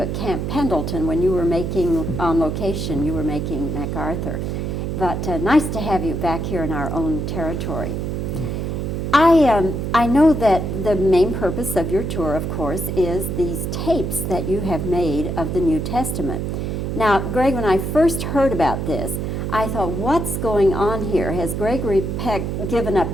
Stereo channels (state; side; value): noise; right; hum, 2 dB below the sound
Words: at Camp Pendleton when you were making, on location, you were making MacArthur. But nice to have you back here in our own territory. I know that the main purpose of your tour, of course, is these tapes that you have made of the New Testament. Now, Greg, when I first heard about this, I thought, what's going on here? Has Gregory Peck given up